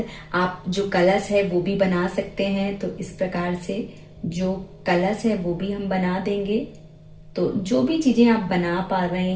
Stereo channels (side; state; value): both; identical; correlation 1.00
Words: आप जो कलश है वो भी बना सकते हैं। तो इस प्रकार से जो कलश है वो भी हम बना देंगे। तो जो भी चीजें आप बना पा रहे